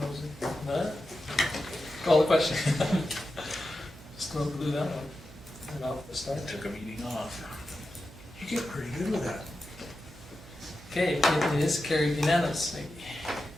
None? Call the question. Just don't do that one. And off the start. Took a meeting off. You get pretty good with that. Okay, it is carried unanimously.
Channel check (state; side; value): noise; right; hum, 19 dB below the sound